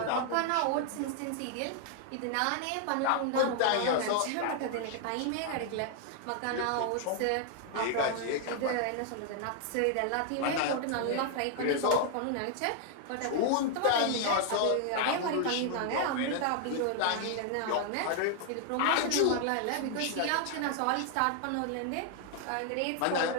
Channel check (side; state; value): both; different; correlation 0.00